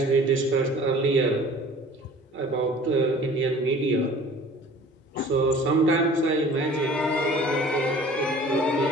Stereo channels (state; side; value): normal; both; correlation 0.47